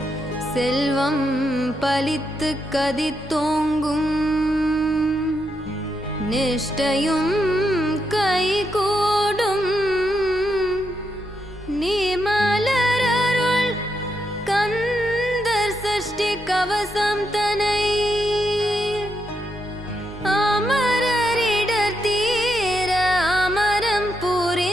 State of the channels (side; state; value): both; normal; correlation 0.82